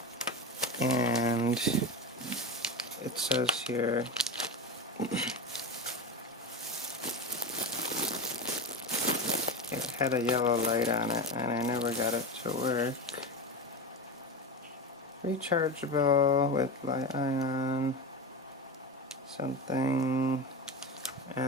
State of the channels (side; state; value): both; normal; correlation 0.21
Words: and it says here it had a yellow light on it, and I never got it to work. Rechargeable with li-ion something,